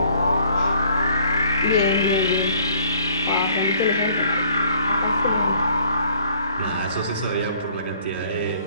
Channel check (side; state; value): both; inverted; correlation -0.59